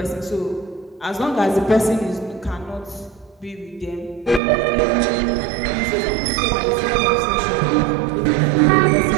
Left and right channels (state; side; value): drops out; left; at 4.4 s